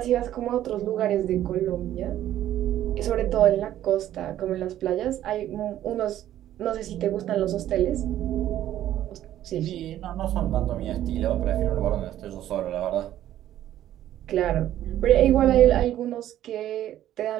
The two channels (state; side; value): quieter; left; 12.4 dB